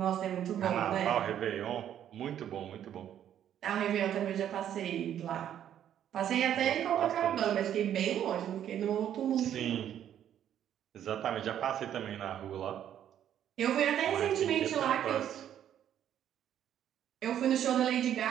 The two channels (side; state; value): left; quieter; 10.3 dB